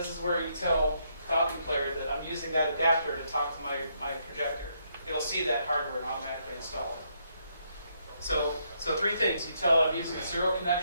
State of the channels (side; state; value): both; inverted; correlation -0.75